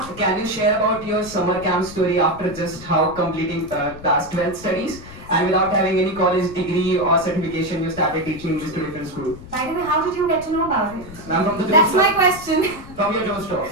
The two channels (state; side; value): noise; left; rumble, 16 dB below the sound